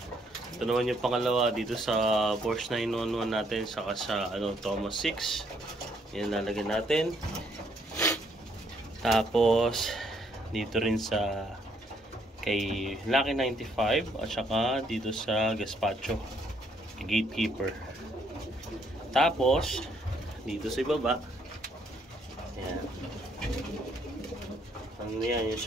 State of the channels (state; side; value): normal; both; correlation 0.70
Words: Ito naman yung pangalawa dito sa Porsche 911 natin, saka sa Thomas 6. Yan lalagyan natin. Tapos dito rin sa kay Lucky 95 at saka dito sa Gaspacho, Gatekeeper. Tapos dito sa ibaba, yan. Ano yan, yung